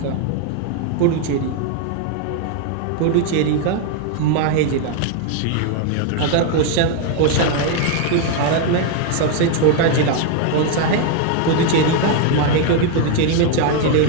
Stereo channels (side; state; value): both; different; correlation 0.01